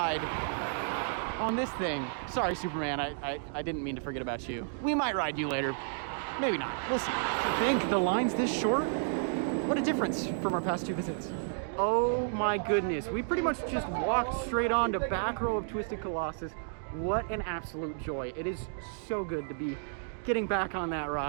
on this thing. Sorry, Superman, I didn't mean to forget about you. We might ride you later. Maybe not, we'll see. I think the line's this short. What a difference from our past 2 visits. Oh my goodness, we pretty much just walked straight on to back row of Twisted Colossus. What an absolute joy. It is so good to be getting back on that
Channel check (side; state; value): left; silent; digital silence